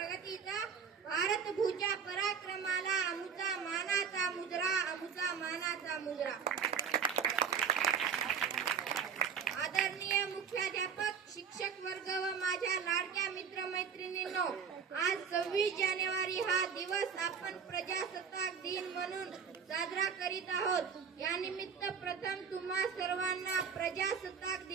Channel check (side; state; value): left; quieter; 6.5 dB